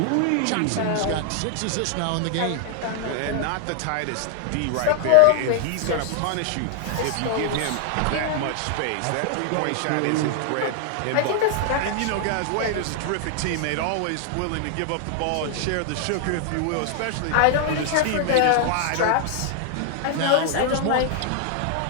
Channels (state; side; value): different; both; correlation 0.00